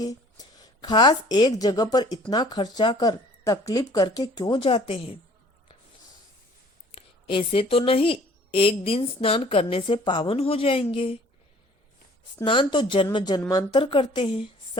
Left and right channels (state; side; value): normal; both; correlation 0.53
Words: खास एक जगह पर इतना खर्चा कर तकलीफ करके क्यों जाते हैं। ऐसे तो नहीं एक दिन स्नान करने से पावन हो जाएंगे। स्नान तो जन्म जन्मांतर करते हैं।